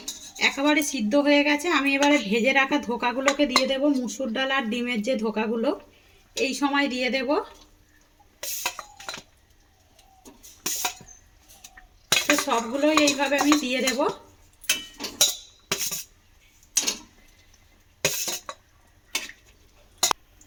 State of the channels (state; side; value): identical; both; correlation 1.00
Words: একেবারে সিদ্ধ হয়ে গেছে। আমি এবারে ভেজে রাখা ধোকাগুলোকে দিয়ে দেব, মুসুর ডাল আর ডিমের যে ধোকাগুলো এই সময় দিয়ে দেব। তো সবগুলোই এইভাবে আমি দিয়ে দেব।